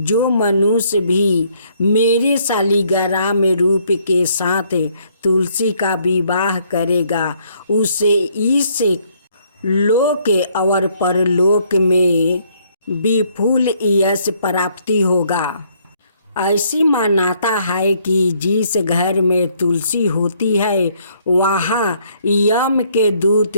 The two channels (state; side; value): inverted; both; correlation -0.67